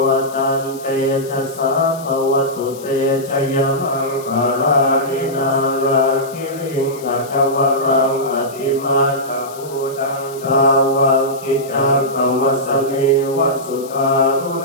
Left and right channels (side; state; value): left; noise; hiss, 19 dB below the sound